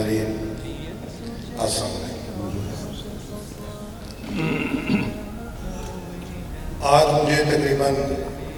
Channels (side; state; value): both; identical; correlation 1.00